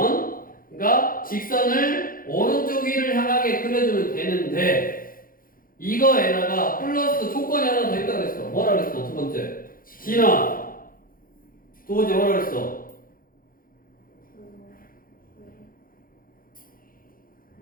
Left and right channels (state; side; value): late; right; 0.41 ms